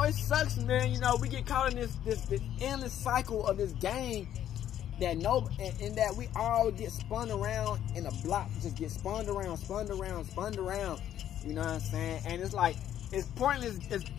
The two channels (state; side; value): quieter; right; 11.0 dB